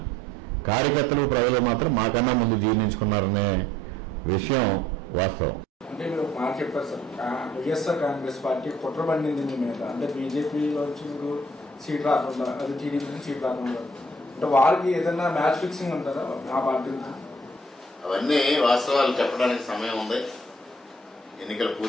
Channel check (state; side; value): normal; both; correlation 0.60